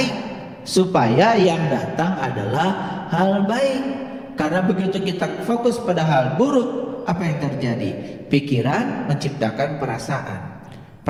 supaya yang datang adalah hal baik. Karena begitu kita fokus pada hal buruk, apa yang terjadi? Pikiran menciptakan perasaan,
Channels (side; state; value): both; identical; correlation 1.00